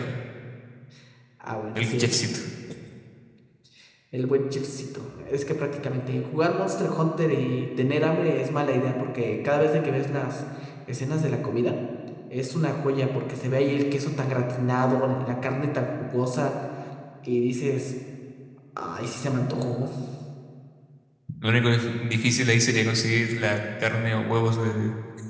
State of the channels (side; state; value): both; identical; correlation 1.00